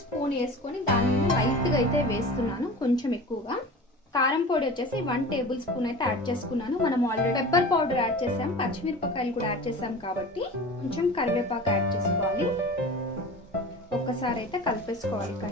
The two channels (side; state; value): both; normal; correlation 0.36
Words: వేసుకొని దాని మీద లైట్గా అయితే వేస్తున్నాను, కొంచెం ఎక్కువగా. కారం పొడి వచ్చేసి 1 టేబుల్ స్పూన్ అయితే యాడ్ చేసుకున్నాను. మనం ఆల్రెడీ పెప్పర్ పౌడర్ యాడ్ చేసాం, పచ్చిమిరపకాయలు కూడా యాడ్ చేసాం కాబట్టి కొంచెం కరివేపాకు యాడ్ చేసుకోవాలి. ఒక్కసారి అయితే కలిపేసుకోవాలి